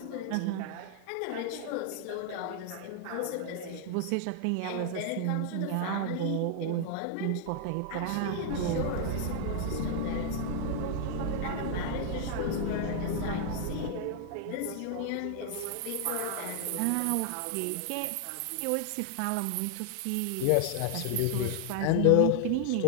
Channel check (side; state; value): both; different; correlation 0.00